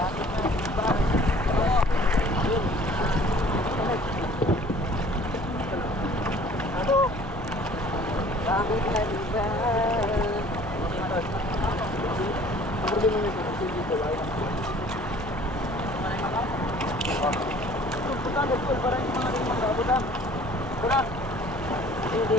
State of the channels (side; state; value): both; normal; correlation 0.51